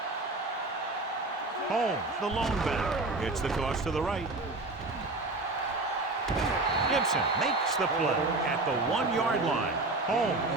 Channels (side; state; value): left; quieter; 3.1 dB